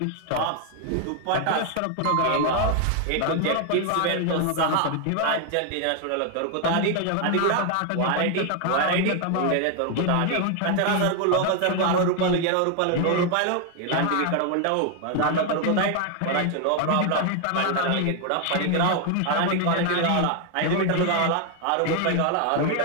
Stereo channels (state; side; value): different; both; correlation 0.00